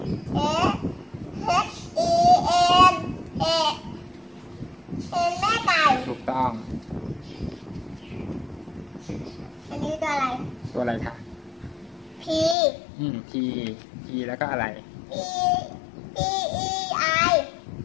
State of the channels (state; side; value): drops out; right; at 12.6 s